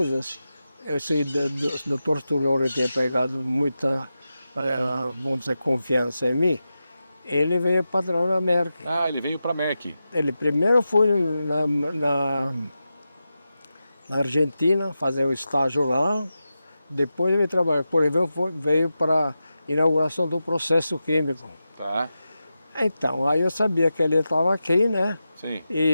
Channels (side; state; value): both; inverted; correlation -0.91